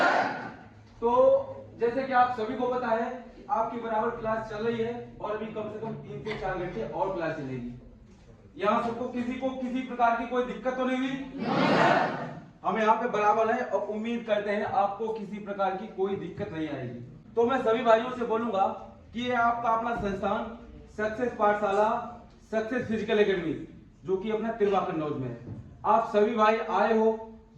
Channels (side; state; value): both; identical; correlation 1.00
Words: तो जैसे कि आप सभी को पता है कि आपकी बराबर क्लास चल रही है और अभी कम से कम 3 से 4 घंटे और क्लास चलेगी। यहाँ सबको किसी को किसी प्रकार की कोई दिक्कत तो नहीं हुई? हम यहाँ पे बराबर है और उम्मीद करते हैं आपको किसी प्रकार की कोई दिक्कत नहीं आएगी। तो मैं सभी भाइयों से बोलूंगा कि ये आपका अपना संस्थान सक्सेस पाठशाला, सक्सेस फिजिकल एकेडमी, जो कि अपना तिरवा कन्नौज में है। आप सभी भाई आए हो,